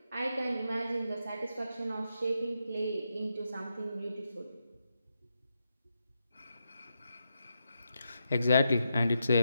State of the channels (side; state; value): both; inverted; correlation -0.85